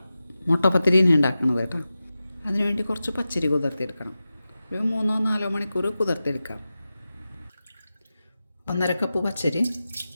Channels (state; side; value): inverted; both; correlation -0.94